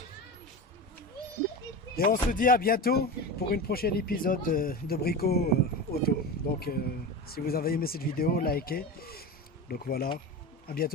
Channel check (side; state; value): both; normal; correlation 0.25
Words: Et on se dit à bientôt pour une prochaine épisode de Brico Auto. Donc si vous avez aimé cette vidéo, likez. Donc voilà, à